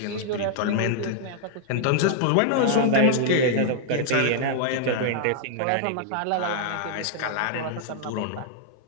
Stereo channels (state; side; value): different; both; correlation 0.00